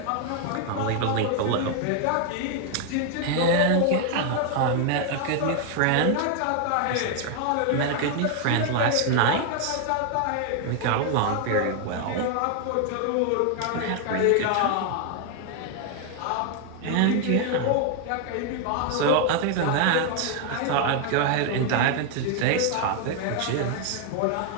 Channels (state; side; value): different; both; correlation 0.00